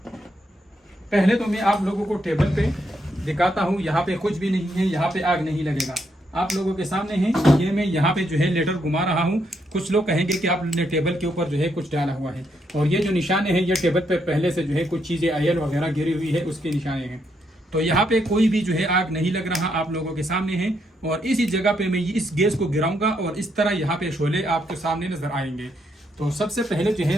पहले तो मैं आप लोगों को टेबल पे दिखाता हूँ। यहाँ पे कुछ भी नहीं है, यहाँ पे आग नहीं लगेगा, आप लोगों के सामने है। ये मैं यहाँ पे जो है लेटर घुमा रहा हूँ। कुछ लोग कहेंगे कि आपने टेबल के ऊपर जो है कुछ डाला हुआ है, और ये जो निशाने हैं ये टेबल पे पहले से जो है कुछ चीजें ऑयल वगैरह गिरी हुई है, उसके निशाने हैं। तो यहाँ पे कोई भी जो है आग नहीं लग रहा, आप लोगों के सामने है। और इसी जगह पे मैं इस गैस को गिराऊंगा और इस तरह यहाँ पे शोले आपके सामने नजर आएंगे। तो सबसे पहले जो है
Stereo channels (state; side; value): normal; both; correlation 0.77